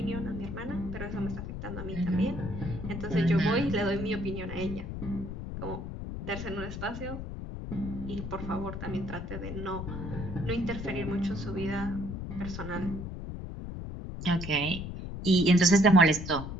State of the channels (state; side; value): noise; left; rumble, 7 dB below the sound